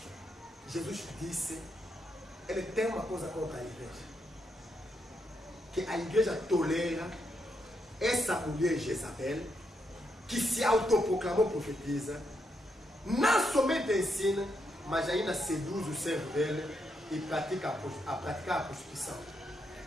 Jesus disse, ele tem uma coisa contra a igreja. Que a igreja tolera essa mulher Jezabel, que se autoproclamou profetiza, não somente ensina, mas ainda seduz o servo dele e pratica a praticar a prostituição.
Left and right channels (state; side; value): normal; both; correlation 0.80